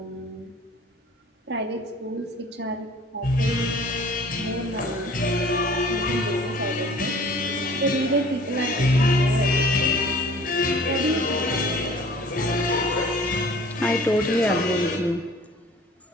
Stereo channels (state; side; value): normal; both; correlation 0.49